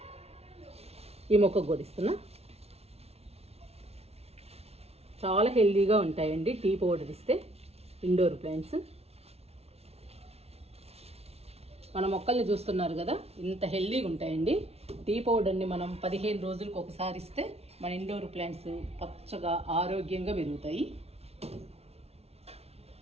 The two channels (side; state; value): left; late; 0.30 ms